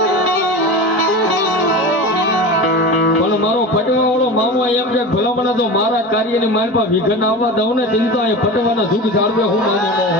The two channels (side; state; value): both; normal; correlation 0.29